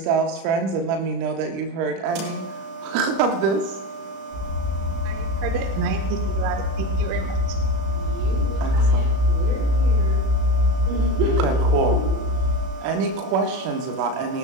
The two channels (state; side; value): late; left; 36 ms